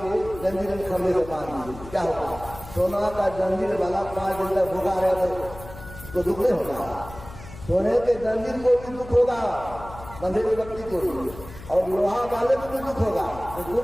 जंजीर में खंभे से बांध दीजिए, क्या होगा? सोना का जंजीर वाला 5 दिन तक भूखा रहे तो दुख नहीं होगा, सोने के जंजीर को भी दुख होगा, बंधे हुए व्यक्ति को भी, और लोहा वाले को भी दुख होगा, तो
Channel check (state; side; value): noise; left; hum, 15 dB below the sound